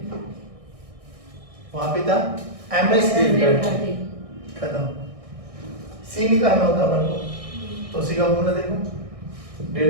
वहां पे था MS डेल्टा T, खत्म। C निकालना होता अपन को, तो C का फॉर्मूला देखो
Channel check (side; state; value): left; late; 1.6 ms